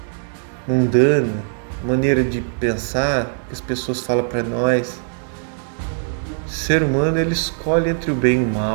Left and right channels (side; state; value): left; silent; digital silence